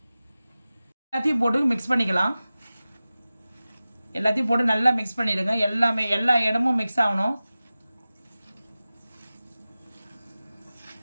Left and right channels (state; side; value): inverted; both; correlation -0.96